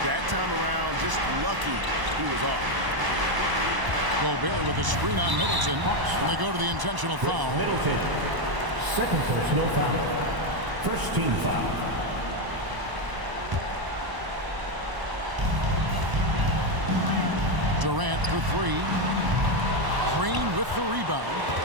that time around. Just lucky he was off. Gobert with a screen on Middleton. And they go to the intentional foul. Middleton. Second personal foul. First team foul. Durant for 3. Green with the rebound.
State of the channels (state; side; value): late; left; 1.0 ms